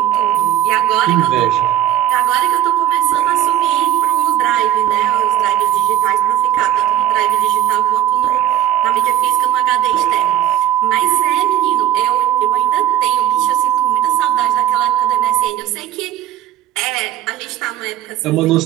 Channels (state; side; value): quieter; left; 12.1 dB